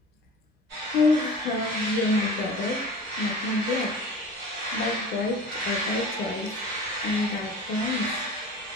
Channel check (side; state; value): both; normal; correlation 0.39